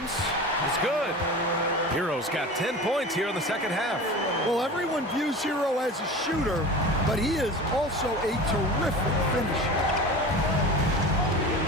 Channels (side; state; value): both; normal; correlation 0.33